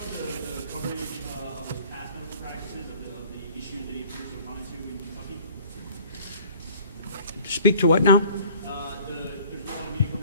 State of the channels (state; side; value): inverted; both; correlation -0.51